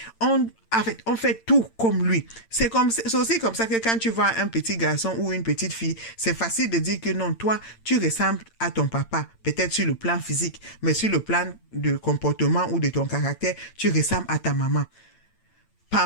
on fait tout comme lui. C'est aussi comme ça que quand tu vois un petit garçon ou une petite fille, c'est facile de dire que non, toi, tu ressembles à ton papa, peut-être sur le plan physique, mais sur le plan de comportement ou de ton caractère, tu ressembles à ta maman.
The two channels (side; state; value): right; late; 8.8 ms